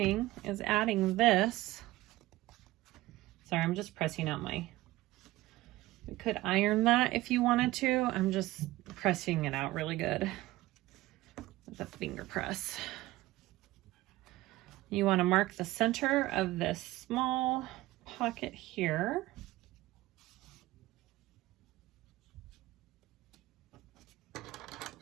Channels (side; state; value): left; quieter; 17.9 dB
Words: is adding this. Sorry, I'm just pressing out my, we could iron that if you wanted to. I'm just pressing it out really good with a finger press. You want to mark the center of this small pocket here.